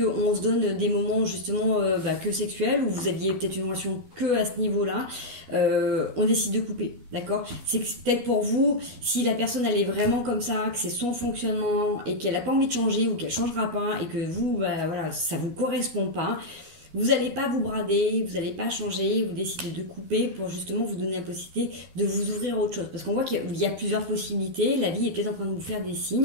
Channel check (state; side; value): late; left; 12 ms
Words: se donne des moments justement que sexuels, où vous aviez peut-être une relation que à ce niveau-là, on décide de couper, d'accord? C'est peut-être pour vous, si la personne elle est vraiment comme ça, que c'est son fonctionnement et qu'elle n'a pas envie de changer ou qu'elle changera pas et que vous, voilà, ça vous correspond pas, vous n'allez pas vous brader, vous n'allez pas changer, vous décidez de couper pour justement vous donner la possibilité de vous ouvrir à autre chose. Parce qu'on voit qu'il y a plusieurs possibilités, la vie est peut-être en train de vous faire des